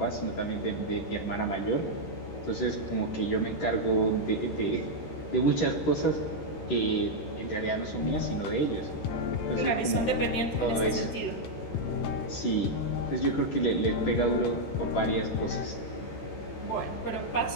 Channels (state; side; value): late; right; 13 ms